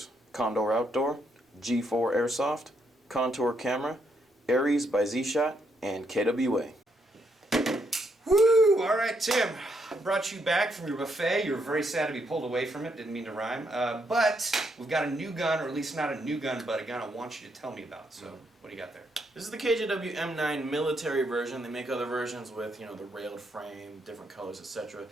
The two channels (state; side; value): normal; both; correlation 0.76